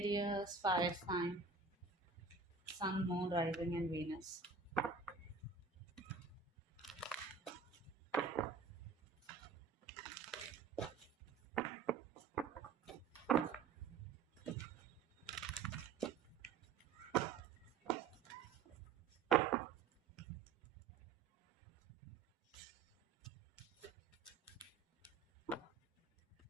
fire sign, Sun, Moon, Rising, and Venus.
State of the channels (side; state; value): left; quieter; 5.0 dB